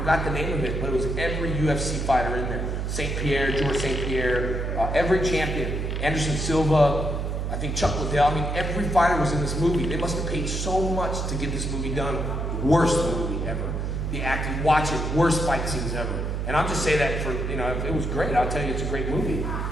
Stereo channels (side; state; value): right; noise; hum, 2 dB below the sound